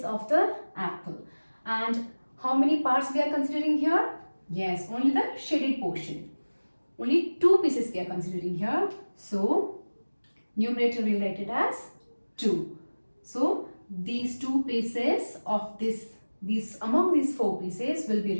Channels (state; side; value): inverted; both; correlation -1.00